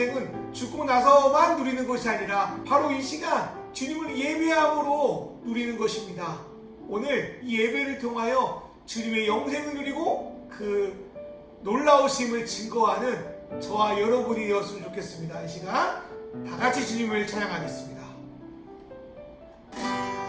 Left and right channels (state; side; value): identical; both; correlation 1.00